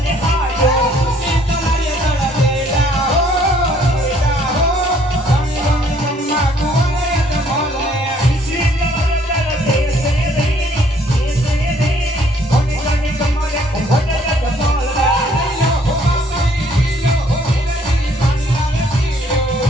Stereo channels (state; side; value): normal; both; correlation 0.63